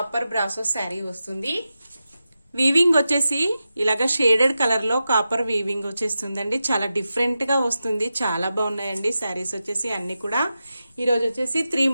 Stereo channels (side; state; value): both; inverted; correlation -0.91